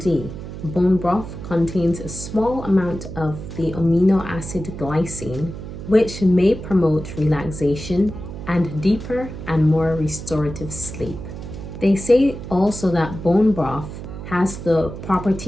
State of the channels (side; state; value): right; noise; hum, 10 dB below the sound